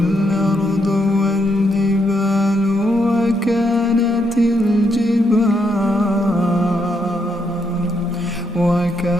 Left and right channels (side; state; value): both; normal; correlation 0.77